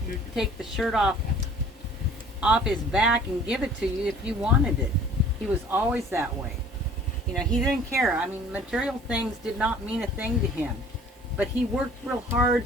take the shirt off his back and give it to you if you wanted it. He was always that way. You know, he didn't care. I mean, material things did not mean a thing to him, but he worked real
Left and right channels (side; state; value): both; normal; correlation 0.51